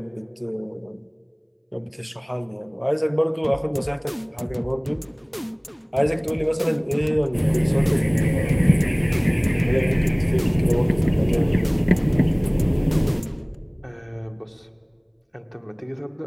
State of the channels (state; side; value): identical; both; correlation 1.00